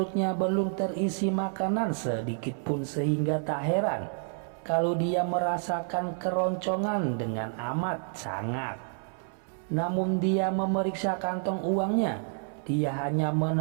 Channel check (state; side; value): silent; left; 58 dB below the other